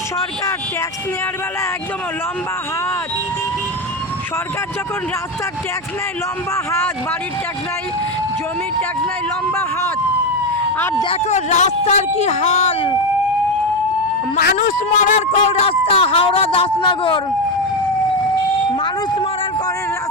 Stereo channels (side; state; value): right; noise; hum, 22 dB below the sound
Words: সরকার ট্যাক্স নেওয়ার বেলা একদম লম্বা হাত। সরকার যখন রাস্তার ট্যাক্স নেয় লম্বা হাত, বাড়ির ট্যাক্স নেয়, জমির ট্যাক্স নেয় লম্বা হাত। আর দেখো রাস্তার কি হাল, মানুষ মরার কল রাস্তা। হাওড়া দাসনগর মানুষ মরার কলের